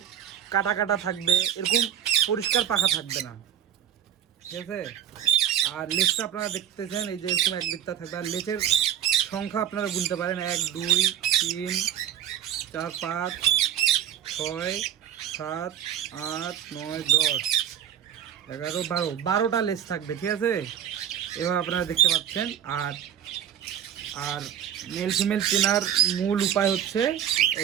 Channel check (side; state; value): left; quieter; 9.9 dB